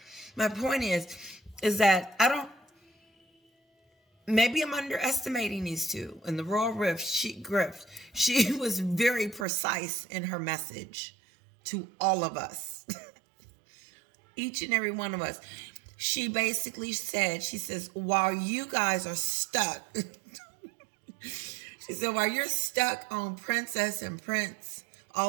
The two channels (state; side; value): drops out; left; at 9.5 s